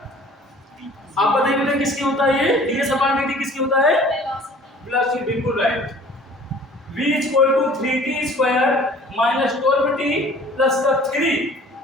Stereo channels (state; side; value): normal; both; correlation 0.49